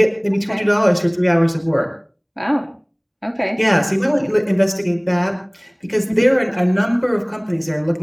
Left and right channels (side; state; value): both; identical; correlation 1.00